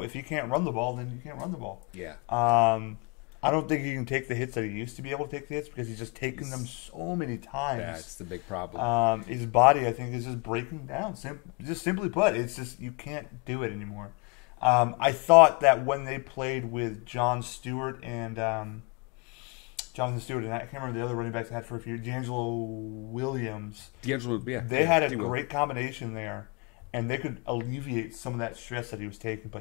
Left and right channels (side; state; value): right; quieter; 31.6 dB